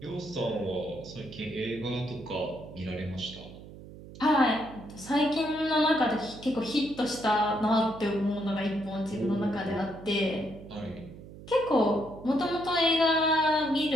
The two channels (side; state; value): right; noise; hum, 16 dB below the sound